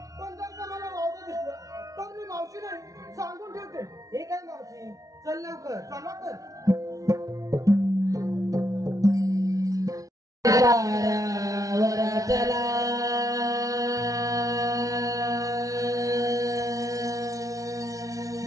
पण जर का मला वावगं दिसलं तर मी मावशी नाही सांगून ठेवते. हे काय मावशी चल लवकर. चला तर. पारावर चला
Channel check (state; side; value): late; left; 0.17 ms